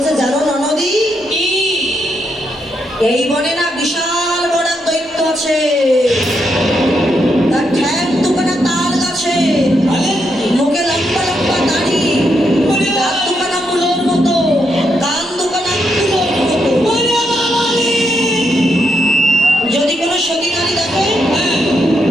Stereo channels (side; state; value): both; normal; correlation 0.80